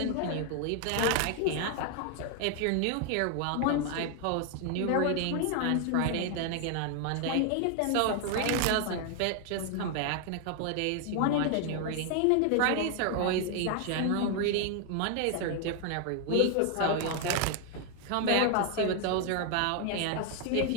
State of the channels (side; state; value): both; different; correlation 0.00